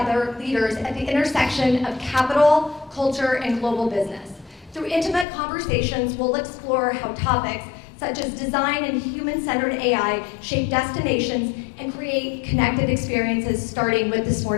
leaders at the intersection of capital, culture, and global business. Through intimate conversations, we'll explore how topics such as design and human-centered AI shape destinations and create connected experiences, starting with this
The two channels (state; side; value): drops out; right; at 5.2 s